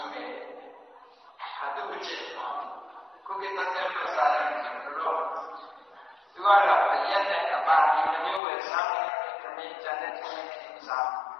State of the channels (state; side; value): drops out; right; at 8.4 s